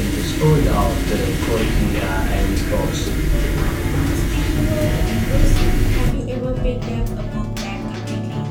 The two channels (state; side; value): identical; both; correlation 1.00